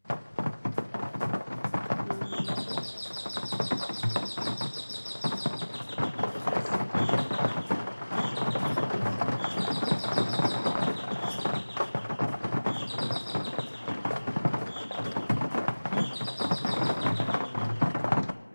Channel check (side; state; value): both; inverted; correlation -1.00